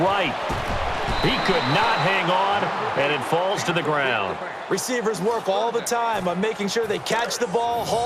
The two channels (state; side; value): identical; both; correlation 1.00